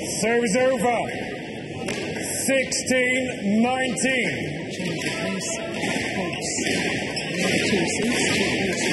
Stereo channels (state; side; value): identical; both; correlation 1.00